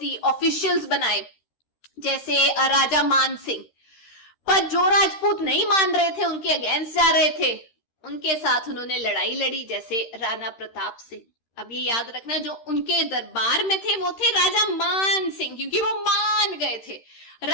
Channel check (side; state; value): right; late; 13 ms